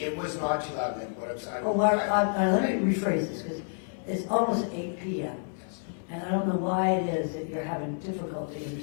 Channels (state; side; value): silent; right; digital silence